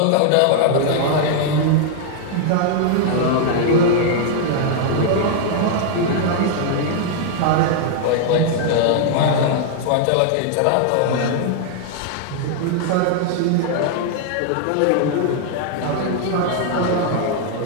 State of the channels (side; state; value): both; different; correlation 0.00